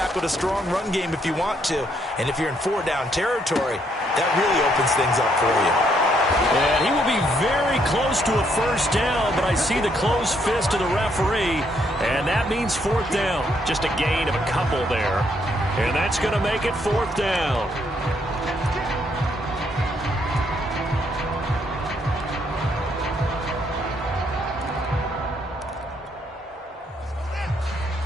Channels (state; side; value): normal; both; correlation 0.72